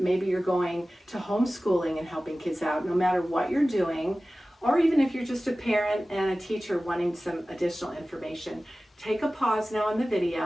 you're going to homeschooling and helping kids out, no matter what you're doing, or even if you're just a parent and a teacher wanting some additional information, take a pause now on the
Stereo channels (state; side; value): normal; both; correlation 0.96